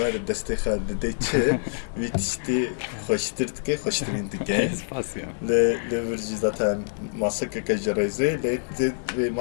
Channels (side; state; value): right; silent; digital silence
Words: destê xwe dide çi vî tiştî xweştir dike, xweştirîn dike. Spasya. Lê vir jî zaten masekeke ji rêzê lê vê